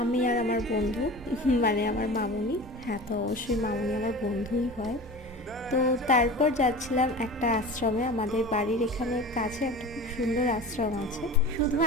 আমি আর আমার বন্ধু, মানে আমার মামুনি। হ্যাঁ, তো অবশ্যই মামুনি আমার বন্ধুই হয়। তো তারপর যাচ্ছিলাম একটা আশ্রমে, আমাদের বাড়ির এখানে কাছে একটা খুব সুন্দর আশ্রম আছে। শুধু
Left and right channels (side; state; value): both; normal; correlation 0.35